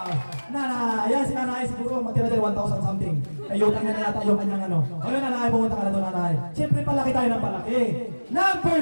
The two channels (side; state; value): both; inverted; correlation -1.00